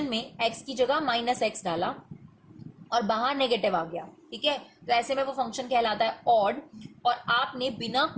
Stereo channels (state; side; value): identical; both; correlation 1.00